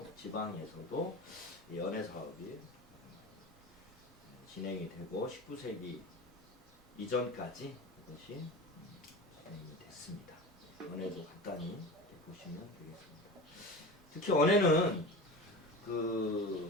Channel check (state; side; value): normal; both; correlation 0.31